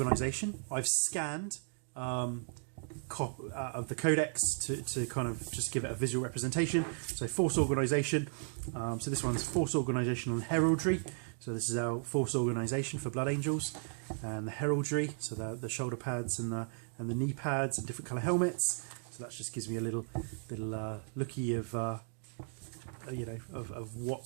I've scanned of the Codex to kind of just give it a visual representation. So force organisation. So this one's force organisation on heraldry. So this is our force organisation for Blood Angels, and the heraldry. So the shoulder pads and the knee pads and different colour helmets. So that just gives me a little looky of you know, of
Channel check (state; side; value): silent; left; 54 dB below the other